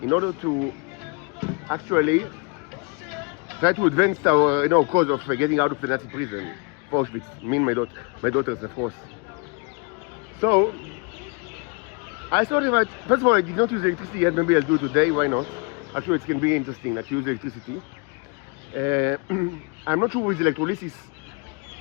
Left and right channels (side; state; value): right; quieter; 33.5 dB